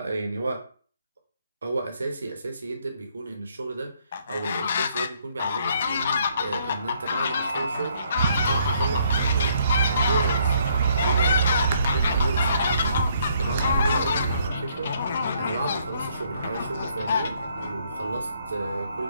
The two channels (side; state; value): both; inverted; correlation -0.67